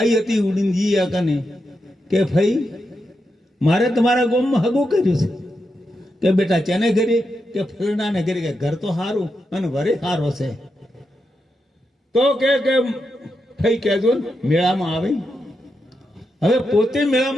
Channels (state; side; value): normal; both; correlation 0.86